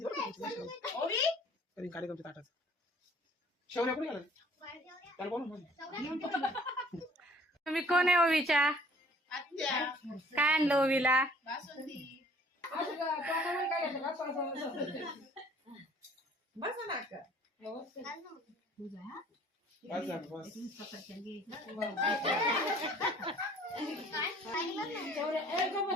बरं तरी कार्यक्रमच्या ताटात शेवण्या कुठे गेला त्याला बोलून तुम्ही कोण आहे ओवीच्या? काय आणलं ओवीला?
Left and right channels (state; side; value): normal; both; correlation 0.55